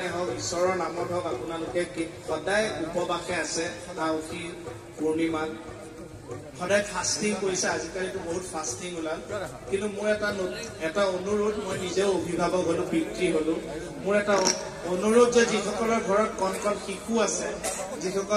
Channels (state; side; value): identical; both; correlation 1.00